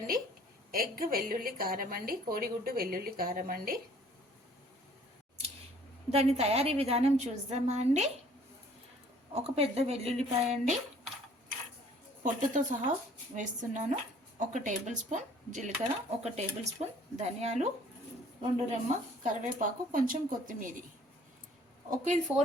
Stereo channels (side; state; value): both; normal; correlation 0.56